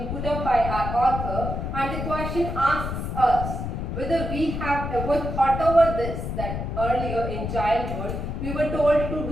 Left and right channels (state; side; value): noise; left; rumble, 4 dB below the sound